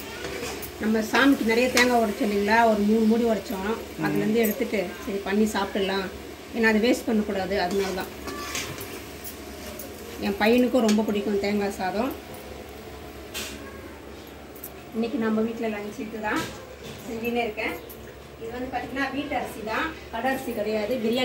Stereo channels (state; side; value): identical; both; correlation 1.00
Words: நம்ம சாமிக்கு நிறைய தேங்காய் உடைச்சோம் இல்லைங்களா, ஒரு 3 மூடி உடைச்சோம். அதுலேருந்து எடுத்துட்டு சரி பண்ணி சாப்பிட்டுடலாம், ஏன்னா அதை வேஸ்ட் பண்ணக்கூடாது. அதனால தான் என் பையனுக்கும் ரொம்ப பிடிக்கும் தேங்காய் சாதம். இன்றைக்கி நம்ம வீட்டில் லஞ்ச் இது தான் செஞ்சுன்னே இருக்கேன். இது வந்து பார்த்திங்கன்னா வீட்டு அரிசி தான், கடை அரிசி கிடையாது,